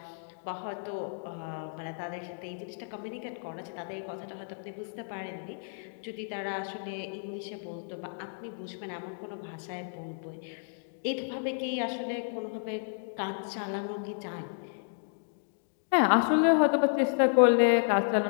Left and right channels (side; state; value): right; silent; digital silence